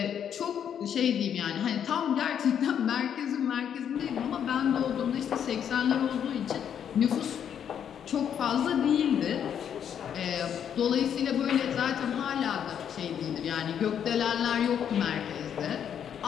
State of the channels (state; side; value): quieter; right; 8.7 dB